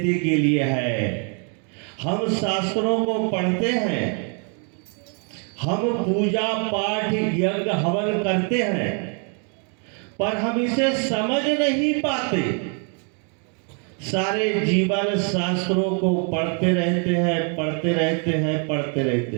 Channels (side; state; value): left; quieter; 39.8 dB